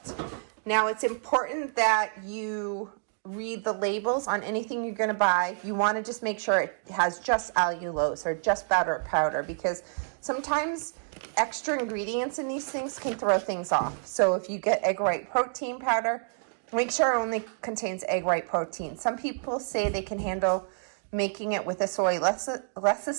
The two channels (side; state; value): left; silent; digital silence